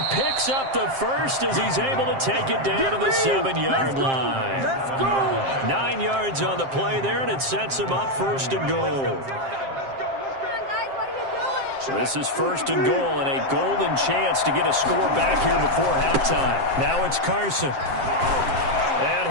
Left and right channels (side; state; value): left; late; 7.6 ms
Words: picks up the first as he's able to take it down to the 7-yard line. Let's go. 9 yards on the play there, and it sets him up first and goal. So this is first and goal, and a golden chance to get a score back here before halftime. Now it's Carson. And